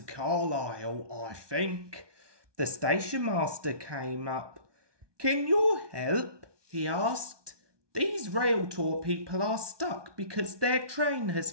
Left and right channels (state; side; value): late; left; 1.2 ms